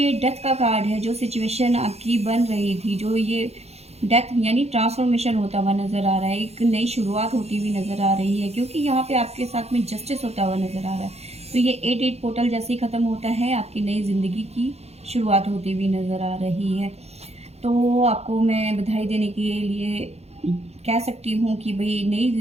डेथ का कार्ड है, जो सिचुएशन आपकी बन रही थी, जो ये डेथ यानी ट्रांसफॉर्मेशन होता हुआ नज़र आ रहा है, एक नई शुरुआत होती हुई नज़र आ रही है, क्योंकि यहाँ पे आपके साथ में जस्टिस होता हुआ नज़र आ रहा है। तो ये 8 पोर्टल जैसे ही ख़त्म होता है, आपकी नई ज़िंदगी की शुरुआत होती हुई नज़र आ रही है। तो आपको मैं बधाई देने के लिए कह सकती हूँ कि भाई नई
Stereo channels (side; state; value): left; late; 0.31 ms